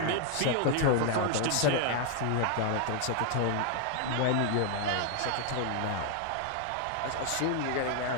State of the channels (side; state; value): both; different; correlation 0.00